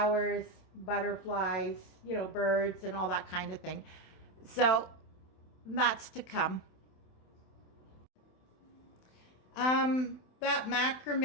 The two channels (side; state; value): right; late; 27 ms